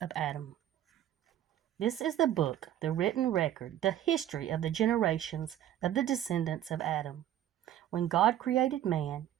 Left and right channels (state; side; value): quieter; left; 11.8 dB